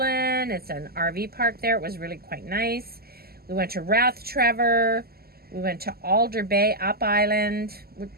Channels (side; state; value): left; late; 0.45 ms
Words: It's an RV park there. It was really quite nice. We went to Rathtrevor. We went to Alder Bay, up island.